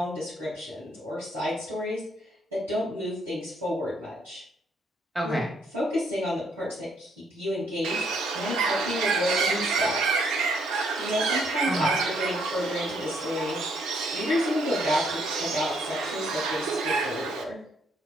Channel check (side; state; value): both; normal; correlation 0.69